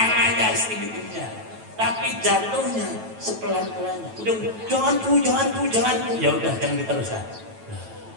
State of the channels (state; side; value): late; left; 9.1 ms